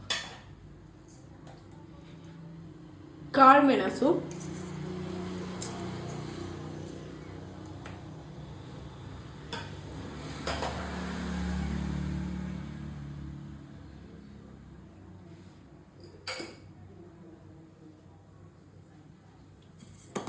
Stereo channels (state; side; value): identical; both; correlation 1.00